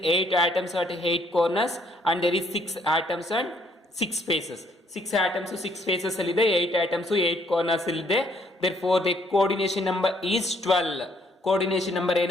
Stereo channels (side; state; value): both; normal; correlation 0.67